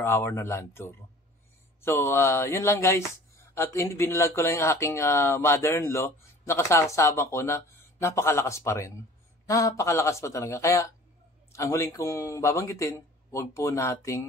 hour na land tour. So, yun lang, guys. At binalag ko lang yung aking mother-in-law na kasama ko na napakalakas pa rin. Napakalakas pa talaga. Kaya, ang huling kong babanggitin, huwag po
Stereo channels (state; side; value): normal; both; correlation 0.46